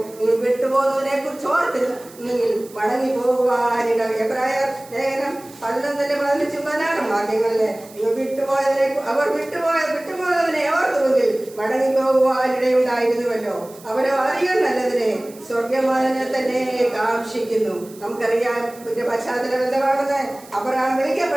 നിങ്ങൾ വിട്ടുപോകുന്നതിനെ കുറിച്ച് ഓർത്തിരുന്നെങ്കിൽ മടങ്ങി പോകുവാനിട. എബ്രായർ ലേഖനം 11-15 വാക്യങ്ങളിലെ നിങ്ങൾ വിട്ടുപോയതിനെ ഓർത്തുവെങ്കിൽ മടങ്ങി പോകുവാനിടയുണ്ടായിരുന്നുവല്ലോ. അവരോ അധികം നല്ലതിനെ സ്വർഗമാനെ തന്നെ കാക്ഷിക്കുന്നു. നമുക്കറിയാം ഇതിന്റെ പശ്ചാത്തലം എന്താണെന്ന്. അബ്രഹാം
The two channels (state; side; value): noise; right; hiss, 22 dB below the sound